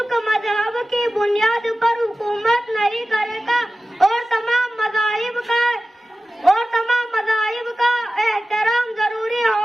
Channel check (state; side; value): normal; both; correlation 0.95